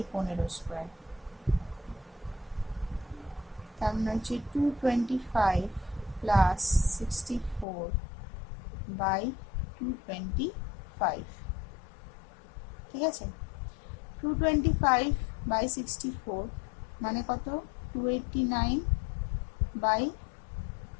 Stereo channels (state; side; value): drops out; right; at 7.7 s